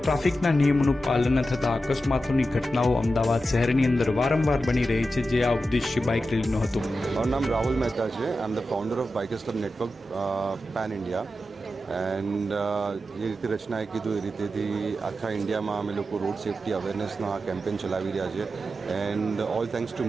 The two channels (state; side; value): normal; both; correlation 0.91